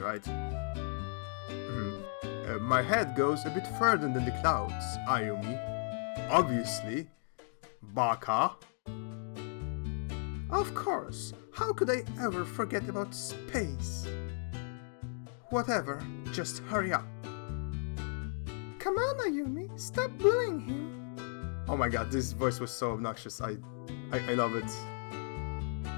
My head goes a bit further than the clouds, Ayumi. Obviously. Baka. Of course. How could I ever forget about space? Whatever, just hurry up. Come on, Ayumi, stop bullying him. Oh my god, this voice was so obnoxious. I love it.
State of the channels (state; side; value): silent; right; 54 dB below the other